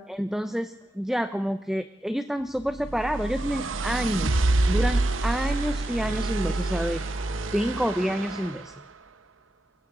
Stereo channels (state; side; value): normal; both; correlation 0.89